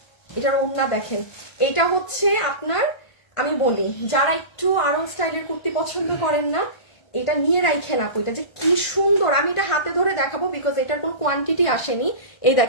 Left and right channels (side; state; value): right; late; 1.5 ms